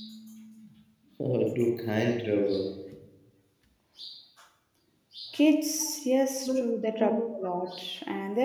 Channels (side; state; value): both; identical; correlation 1.00